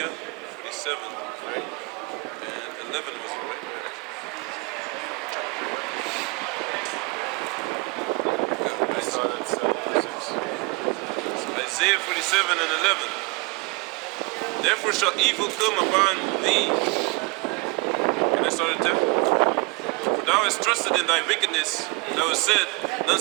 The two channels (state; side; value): quieter; left; 27.8 dB